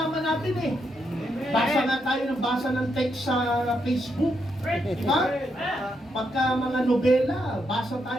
natin eh. Basa nga tayo ng basa ng text sa Facebook. Diba? Pagka mga nobela, basa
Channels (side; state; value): both; normal; correlation 0.80